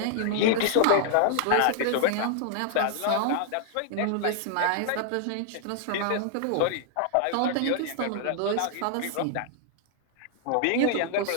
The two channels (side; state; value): both; different; correlation 0.00